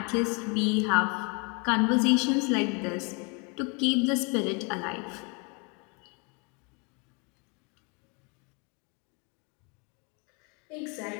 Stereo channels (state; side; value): quieter; right; 32.7 dB